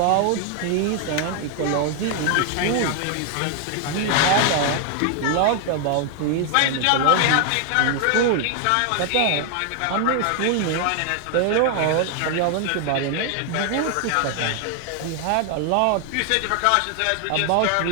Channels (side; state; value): both; different; correlation 0.00